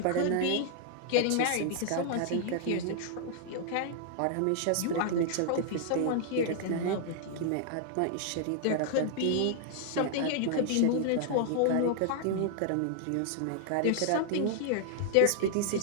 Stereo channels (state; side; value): different; both; correlation -0.01